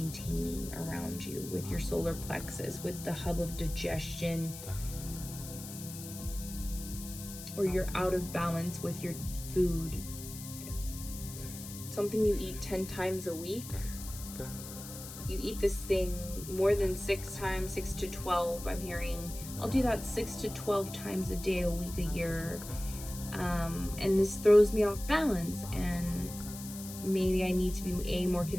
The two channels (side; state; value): left; noise; hiss, 12 dB below the sound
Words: around you with your solar plexus, with the hub of digestion, or you're out of balance with your food. Something you eat 10 times a week. You eat this thing more than 6 times, 6 to 12, I'm hearing. I'll do that 6 to 12 times a day, a week, a year. And this throws me off balance, and maybe I need to be more